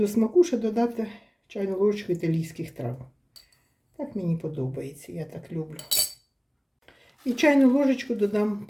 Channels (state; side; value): identical; both; correlation 1.00